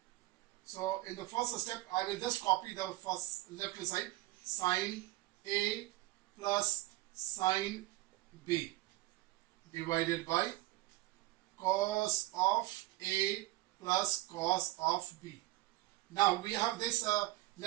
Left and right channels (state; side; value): quieter; left; 18.7 dB